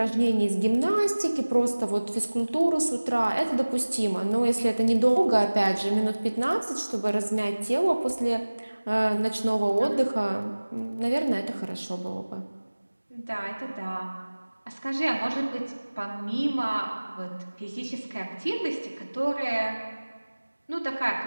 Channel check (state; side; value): inverted; both; correlation -1.00